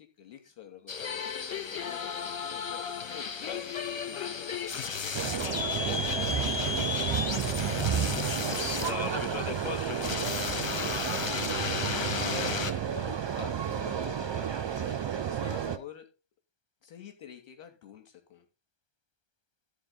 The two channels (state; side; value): late; left; 1.3 ms